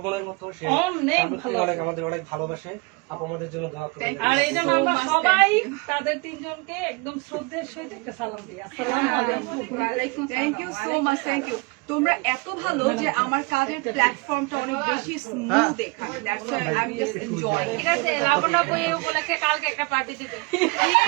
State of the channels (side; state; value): left; quieter; 27.9 dB